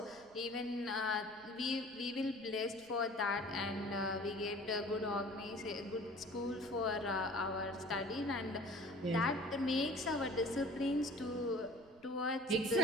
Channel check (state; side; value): noise; right; rumble, 27 dB below the sound